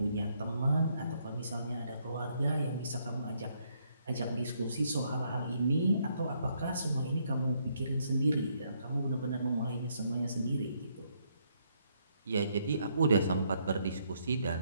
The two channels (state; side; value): inverted; both; correlation -0.72